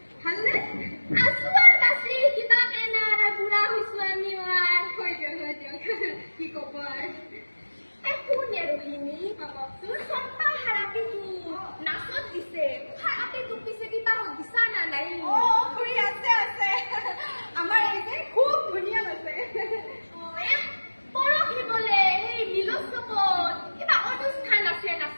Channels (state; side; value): inverted; both; correlation -1.00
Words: ভালনে? আছো আৰু বাছি কিবা এনাৰ বুঢ়া হৈছো আমি আৰু। হৈ দিয়ক কি ক'ব আৰু। কোনে ৰহিনী বাবকচোন চম্পা হাৰাপিটো নাচত দিছে। হাৰাপিটো পিছে কিবা দিছা না নাই? খুৰী আছে আছে। আমাৰ এই যে খুব ধুনীয়া আছে। পৰহি বোলে সেই মিলোৎসৱত কিবা অনুষ্ঠান আছে